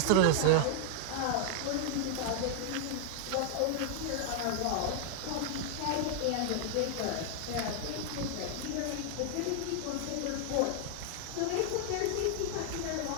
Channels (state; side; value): different; both; correlation -0.01